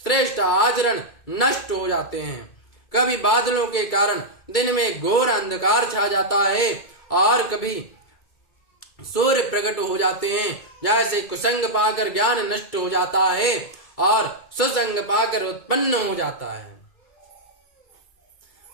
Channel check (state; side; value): late; right; 2.3 ms